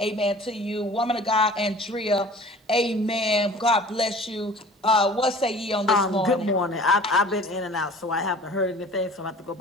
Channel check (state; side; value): normal; both; correlation 0.45